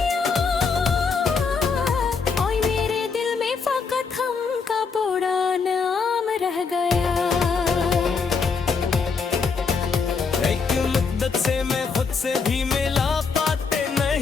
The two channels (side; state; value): right; quieter; 5.1 dB